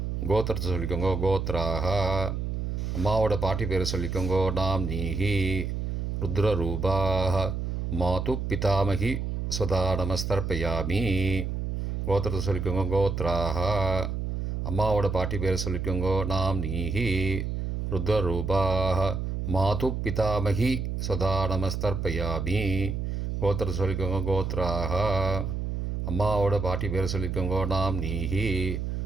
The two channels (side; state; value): right; noise; hum, 2 dB below the sound